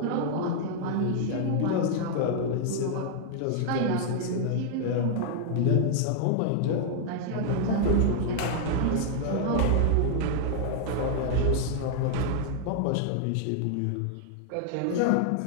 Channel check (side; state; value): both; different; correlation -0.01